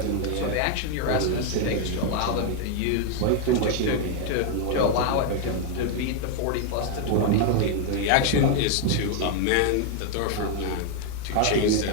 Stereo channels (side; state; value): both; different; correlation 0.01